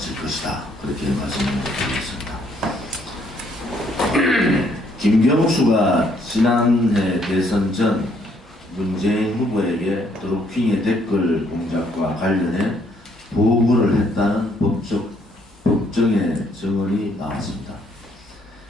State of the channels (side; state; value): both; normal; correlation 0.68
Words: 것이다. 그렇게 말씀을 드리겠습니다. 김경수가 지난해 대선 전 문재인 후보에게 드루킹의 댓글 공작과 관련해 보고를 했다는 법정의 증언이 나왔습니다.